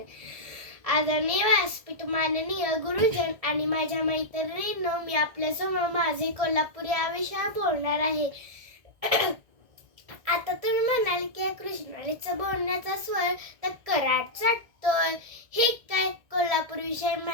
आदरणीय व्यासपीठ, माननीय गुरुजन आणि माझ्या मैत्रिणींनो, मी आपल्यासमोर माझे कोल्हापूर या विषयावर बोलणार आहे. आता तुम्ही म्हणाल की कृष्णालीचा बोलण्याचा स्वर तर कराड चढतोय, हे काय कोल्हापूर विषयी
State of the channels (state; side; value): late; left; 1.6 ms